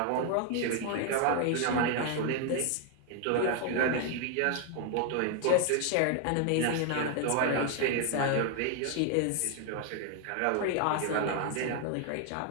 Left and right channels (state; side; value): different; both; correlation 0.00